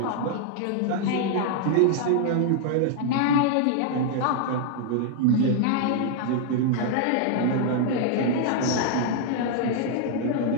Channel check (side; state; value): both; different; correlation 0.00